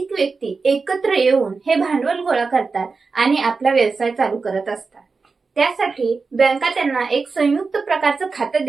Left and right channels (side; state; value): left; quieter; 4.5 dB